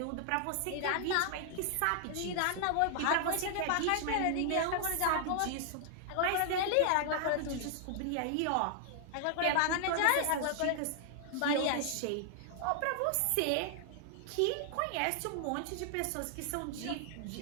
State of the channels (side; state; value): both; different; correlation 0.00